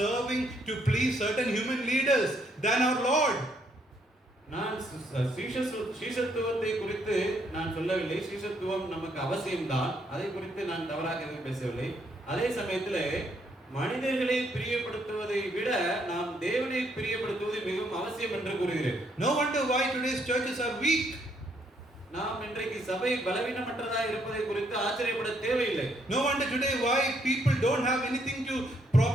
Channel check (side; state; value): both; normal; correlation 0.72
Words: to please certain human leaders than our Lord. நான் சீஷத்துவத்தை குறித்து நான் சொல்லவில்லை. சீஷத்துவம் நமக்கு அவசியம்தான், அதை குறித்து நான் தவறாக எதுவும் பேசவில்லை. அதே சமயத்தில் மனிதர்களை பிரியப்படுத்துவதை விட நாம் தேவனை பிரியப்படுத்துவது மிகவும் அவசியம் என்று கூறுகிறேன். No wonder why today's churches are weak. நாம் இன்றைக்கு சபை பலவீனமற்றதா இருப்பதை குறித்து ஆச்சரியப்பட தேவையில்லை. No wonder today why people don't have anything to